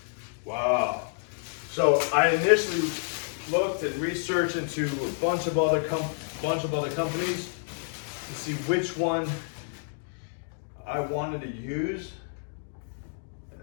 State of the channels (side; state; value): right; silent; digital silence